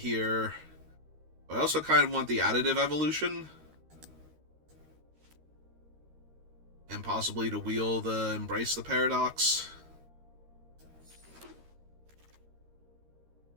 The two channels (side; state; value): left; late; 13 ms